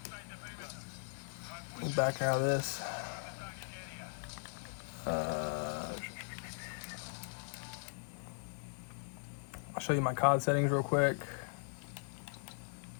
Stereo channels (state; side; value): silent; right; digital silence